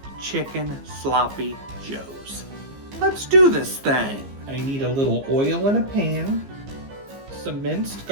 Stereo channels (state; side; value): late; left; 15 ms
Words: Chicken Sloppy Joes. Let's do this thing. I need a little oil in a pan, some minced